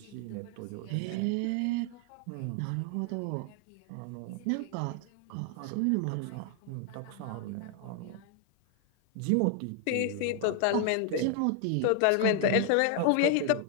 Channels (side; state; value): both; different; correlation 0.00